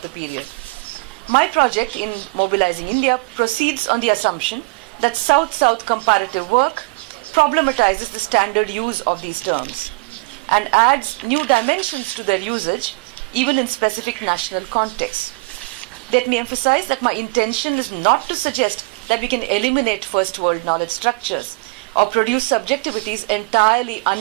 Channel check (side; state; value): left; quieter; 28.5 dB